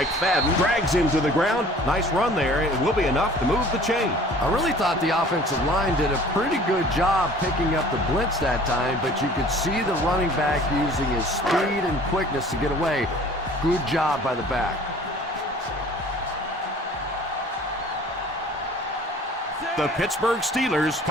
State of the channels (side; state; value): both; normal; correlation 0.49